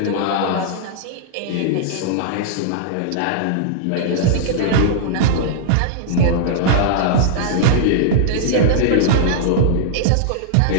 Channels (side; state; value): both; different; correlation -0.01